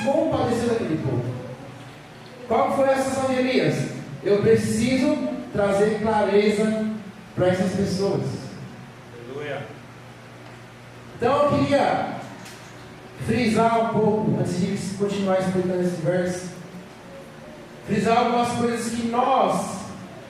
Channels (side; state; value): both; identical; correlation 1.00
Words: compadeceu daquele povo. Qual foi a sensação de Elias? Eu preciso trazer clareza para essas pessoas. Aleluia. Então eu queria frisar um pouco, antes de continuar explicando esse verso, frisar algumas coisas que nós